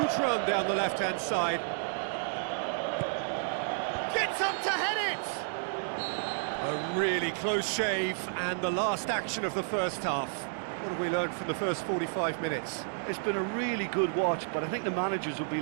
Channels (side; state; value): left; silent; digital silence